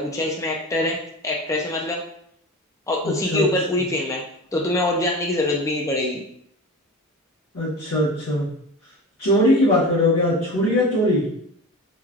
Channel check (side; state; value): both; normal; correlation 0.31